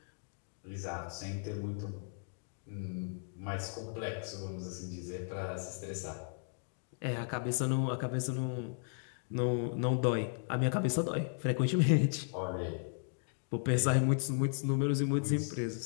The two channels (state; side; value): silent; right; digital silence